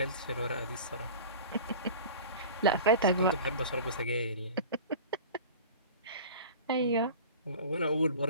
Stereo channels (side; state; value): both; inverted; correlation -0.38